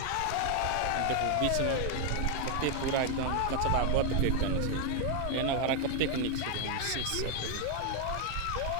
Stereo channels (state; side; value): different; both; correlation 0.01